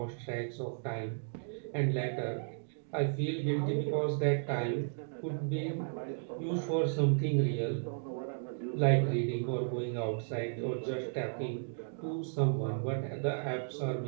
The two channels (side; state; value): left; silent; digital silence